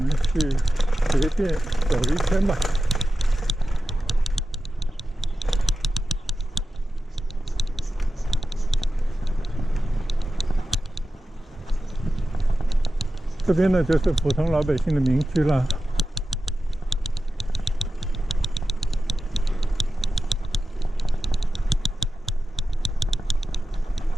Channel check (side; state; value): both; normal; correlation 0.93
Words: 去随便走一圈吧。这边呢就是普通老百姓的民居了。